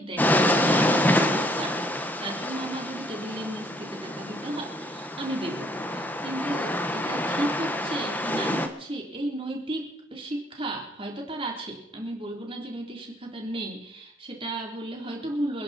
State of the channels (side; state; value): both; normal; correlation 0.65